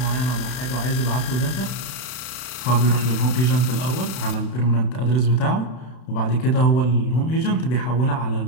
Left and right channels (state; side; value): late; right; 32 ms